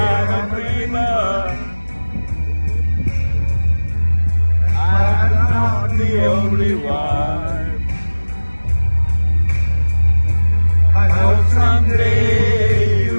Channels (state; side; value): inverted; both; correlation -1.00